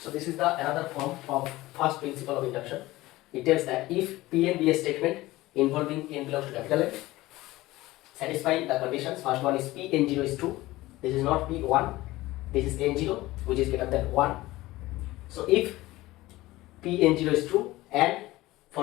this is the another form of first principle of induction. It tells that if Pn be a statement involving n belongs to capital N, satisfying the conditions. First one is Pn0 is true. This is not P1. This is n0, which is greater than 1. So if Pn0 is true, and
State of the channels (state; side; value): quieter; right; 18.2 dB